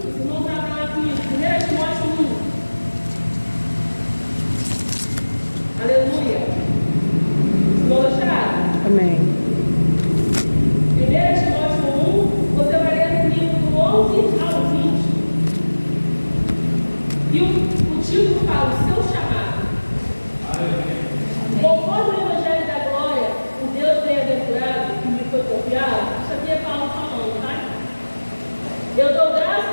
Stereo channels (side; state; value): both; inverted; correlation -1.00